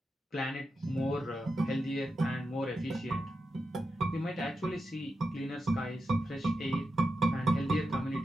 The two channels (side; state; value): both; normal; correlation 0.89